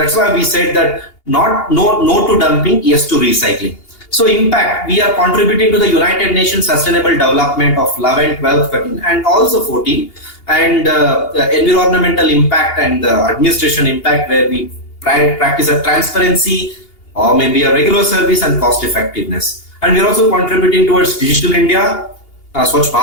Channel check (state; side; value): late; right; 2.8 ms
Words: why we said that no to dumping, yes to recycling. So impact, we are contributing to the United Nations Sustainable Development of 11, 12, 13 and also 14, and environmental impact and administration impact, where we practice a transparency or maybe a regular service and cost effectiveness. And we are also contributing towards Digital India, Swachh